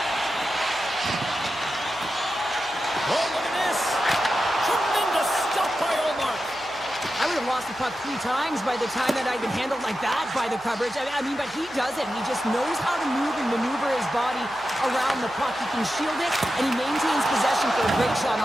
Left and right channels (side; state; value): right; noise; hum, 24 dB below the sound